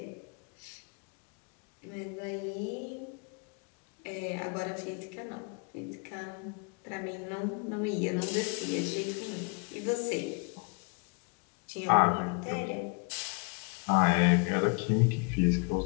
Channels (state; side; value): quieter; right; 34.8 dB